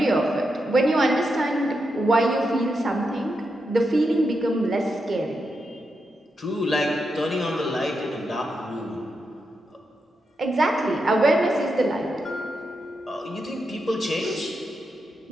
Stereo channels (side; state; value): both; normal; correlation 0.85